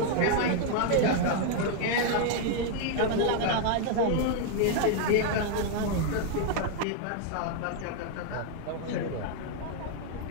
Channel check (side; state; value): both; different; correlation 0.00